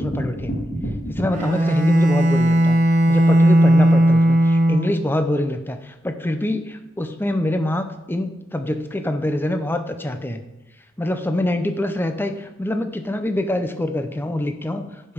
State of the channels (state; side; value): normal; both; correlation 0.88